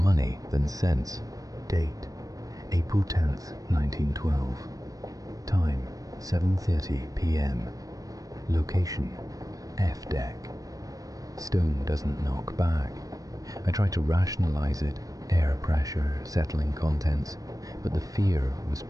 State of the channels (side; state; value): left; late; 0.17 ms